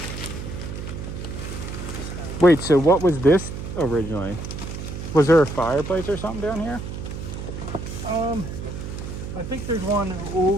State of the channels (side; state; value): right; noise; hum, 7 dB below the sound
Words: Wait, so what was this originally? Was there a fireplace or something down here? I think there's one